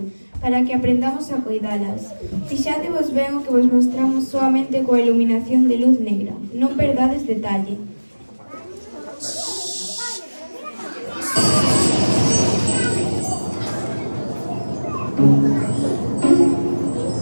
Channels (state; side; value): inverted; both; correlation -1.00